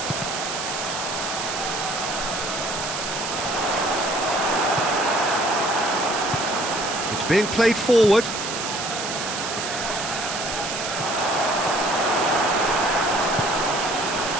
It's being played forward.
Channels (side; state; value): right; noise; hiss, 5 dB below the sound